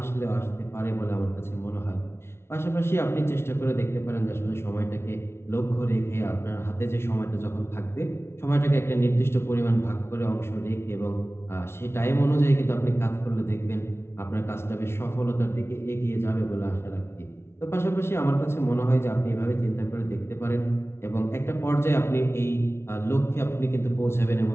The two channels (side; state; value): right; late; 0.12 ms